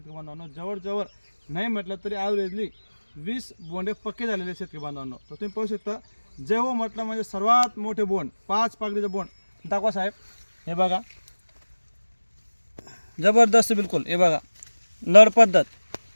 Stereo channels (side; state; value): both; inverted; correlation -1.00